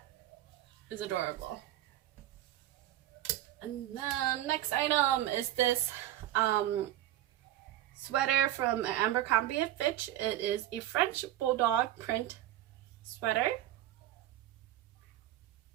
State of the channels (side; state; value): left; quieter; 13.5 dB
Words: is adorable. And then next item is this sweater from Abercrombie & Fitch. It is a French bulldog print sweater.